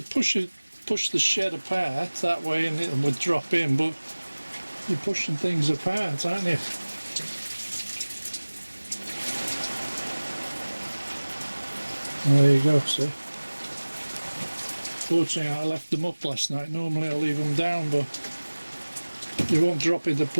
push the shed apart that way and it would drop in, but you're pushing things apart, aren't you? And there you go, see. Fortunately I left them up last night. Normally I leave them down, but they won't drop into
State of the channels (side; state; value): both; inverted; correlation -1.00